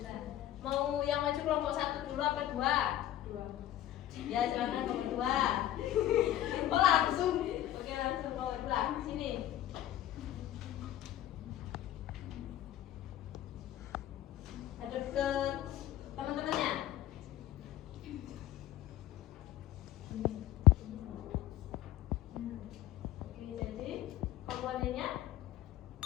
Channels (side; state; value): right; quieter; 13.0 dB